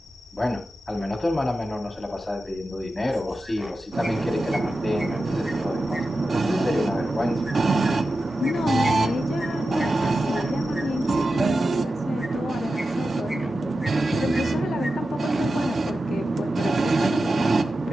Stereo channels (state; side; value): normal; both; correlation 0.92